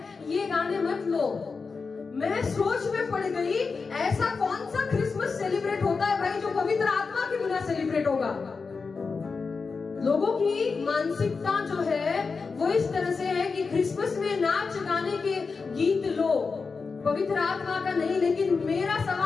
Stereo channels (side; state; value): right; quieter; 4.7 dB